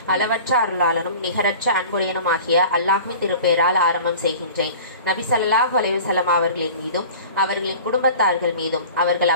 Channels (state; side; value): inverted; both; correlation -0.41